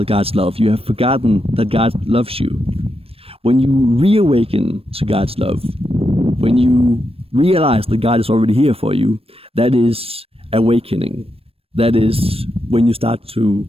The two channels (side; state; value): left; late; 0.28 ms